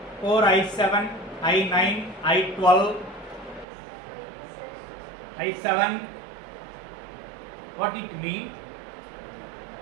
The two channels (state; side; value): drops out; left; at 3.7 s